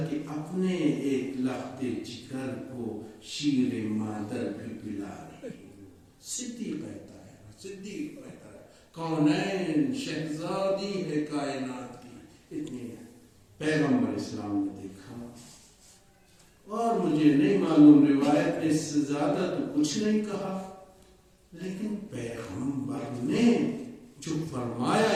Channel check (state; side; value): identical; both; correlation 1.00